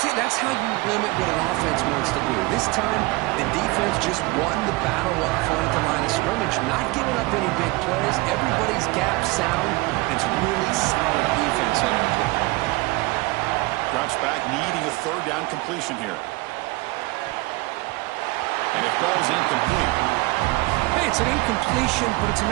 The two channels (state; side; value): quieter; left; 23.1 dB